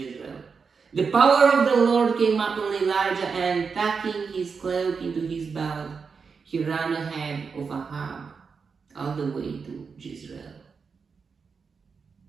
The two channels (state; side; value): quieter; left; 5.4 dB